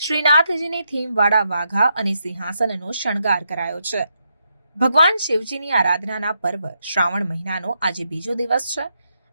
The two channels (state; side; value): inverted; both; correlation -0.81